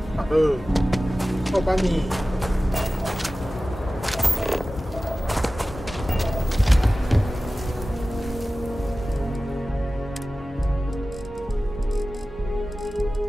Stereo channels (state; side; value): normal; both; correlation 0.96